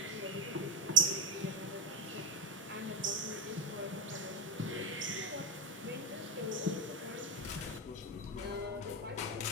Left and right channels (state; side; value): normal; both; correlation 0.13